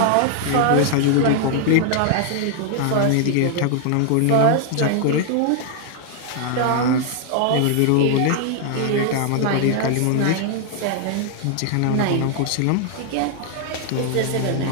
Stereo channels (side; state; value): both; different; correlation 0.00